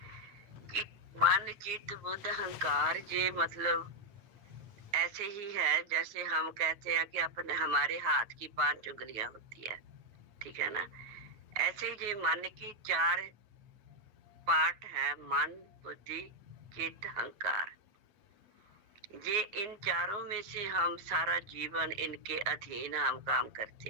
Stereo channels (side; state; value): left; late; 9.5 ms